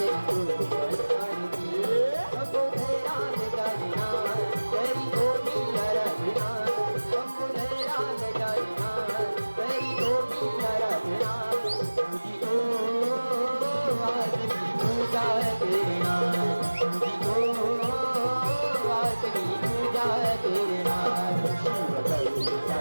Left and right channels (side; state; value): both; inverted; correlation -1.00